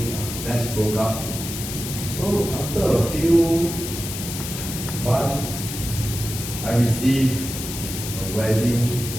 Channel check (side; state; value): left; noise; hiss, 7 dB below the sound